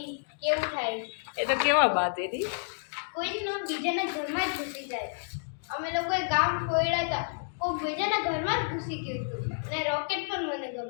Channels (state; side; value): silent; right; digital silence